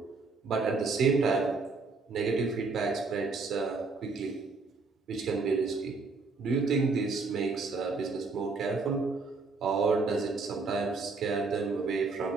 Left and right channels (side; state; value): left; quieter; 4.1 dB